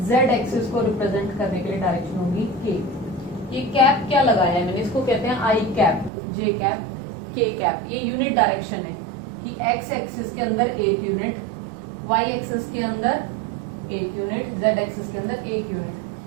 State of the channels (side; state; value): left; drops out; at 6.1 s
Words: z एक्सिस को रिप्रेजेंट करने के लिए डायरेक्शन होगी k। ये कैप क्या लगाया है मैंने, इसको कहते हैं आई कैप, जे कैप, के कैप। ये यूनिट डायरेक्शन है कि x एक्सिस के अंदर एक यूनिट, y एक्सिस के अंदर एक यूनिट, z एक्सिस के अंदर एक